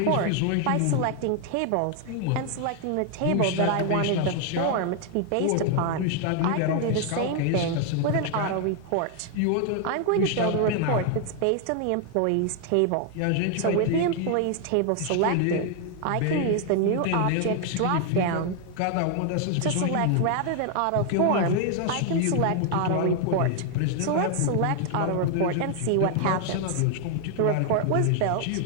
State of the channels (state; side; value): different; both; correlation 0.00